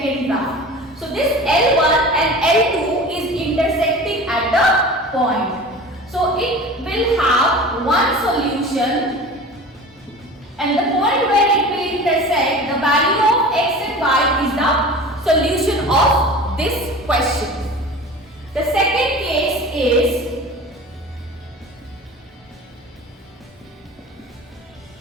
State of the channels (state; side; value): normal; both; correlation 0.37